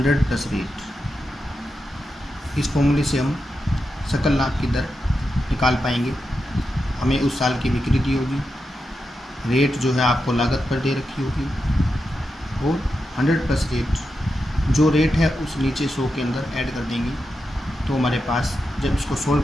plus rate. इस फॉर्मूले से हम सकल लाभ की दर निकाल पाएंगे। हमें उस साल की बिक्री दी होगी, रेट जो है आपको लागत पर दे रखी होगी, और 100 प्लस रेट, जो रेट है उस नीचे 100 के अंदर ऐड कर देंगे, तो हमारे पास जब इसको सोल्व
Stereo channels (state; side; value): normal; both; correlation 0.88